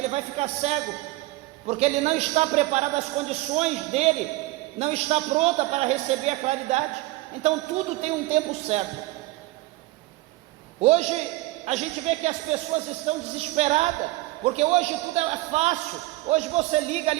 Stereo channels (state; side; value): quieter; left; 18.9 dB